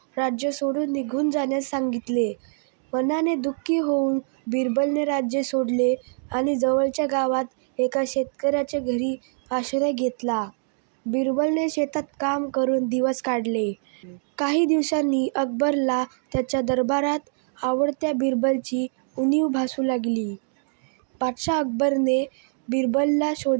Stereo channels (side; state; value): left; silent; 60 dB below the other